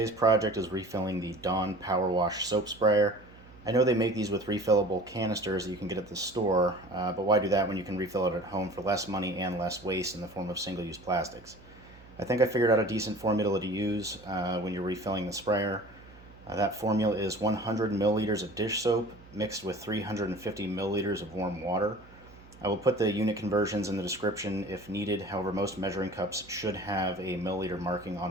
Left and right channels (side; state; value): right; noise; hum, 23 dB below the sound